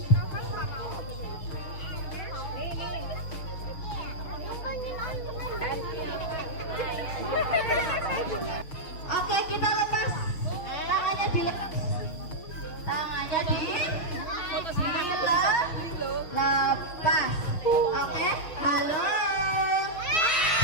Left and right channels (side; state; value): right; late; 6.6 ms